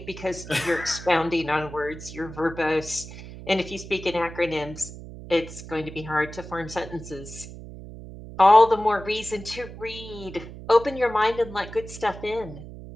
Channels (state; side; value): noise; right; hum, 13 dB below the sound